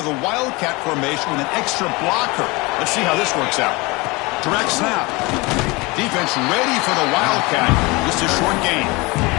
the Wildcat formation with an extra blocker. Let's see how this works out. Direct snap. Defense ready for the Wildcat. Just a short gain.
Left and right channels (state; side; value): quieter; right; 24.9 dB